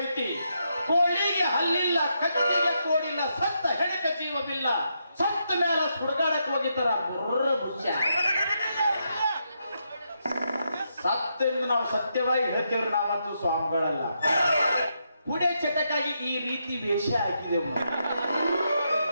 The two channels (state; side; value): inverted; both; correlation -0.81